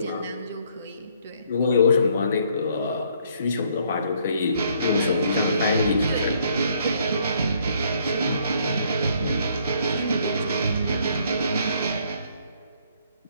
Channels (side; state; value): both; inverted; correlation -0.66